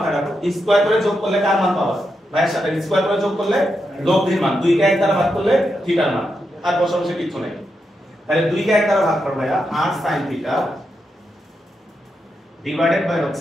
রাখো, স্কয়ার করে যোগ করলে কার মান পাওয়া? ভাইয়ের সাথে স্কয়ার করে যোগ করলে লব্ধির মান, 2 কে 1 দ্বারা ভাগ করলে থিটার মান, আর বসাবসে কিছু নেই। তাহলে 2 কে 1 দ্বারা ভাগ করো ভাইয়া, r sin theta divided by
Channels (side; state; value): both; normal; correlation 0.85